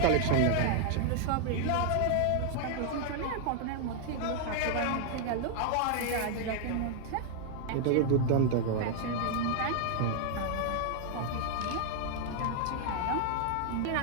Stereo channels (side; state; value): both; different; correlation 0.00